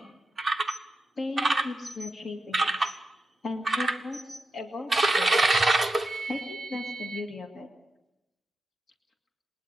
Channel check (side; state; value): both; normal; correlation 0.89